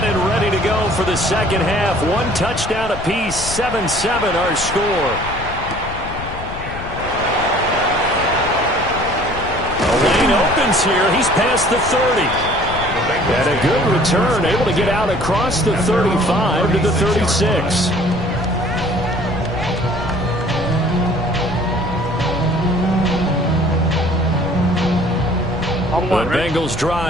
and ready to go for the 2nd half. 1 touchdown apiece. 7-7 our score. The lane opens here. He's past the 30. And a good return, able to get out across the 35 to the 36. The Bengals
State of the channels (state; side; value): noise; left; rumble, 10 dB below the sound